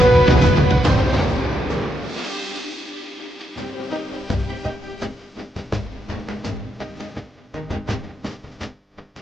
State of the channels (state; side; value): normal; both; correlation 0.81